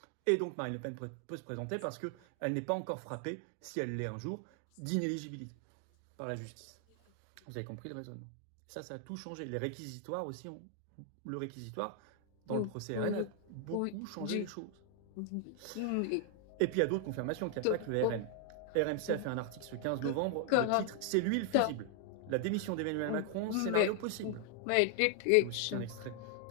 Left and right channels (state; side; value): different; both; correlation 0.00